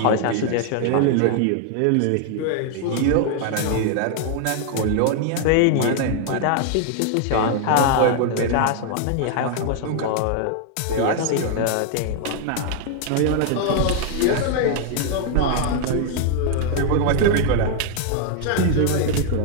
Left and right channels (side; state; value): both; different; correlation 0.00